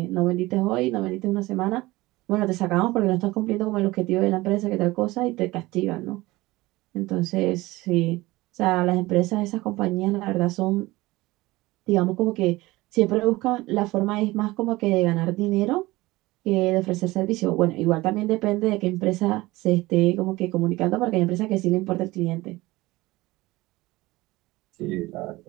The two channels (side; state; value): left; quieter; 19.9 dB